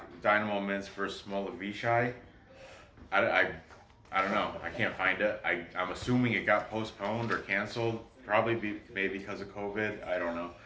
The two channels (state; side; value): identical; both; correlation 1.00